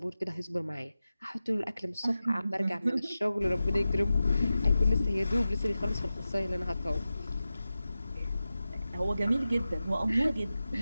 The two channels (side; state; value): both; inverted; correlation -0.93